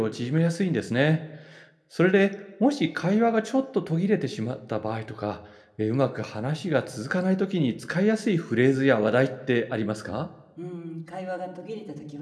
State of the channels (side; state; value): both; identical; correlation 1.00